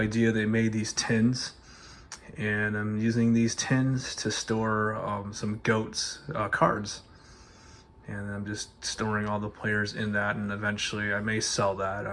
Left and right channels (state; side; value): identical; both; correlation 1.00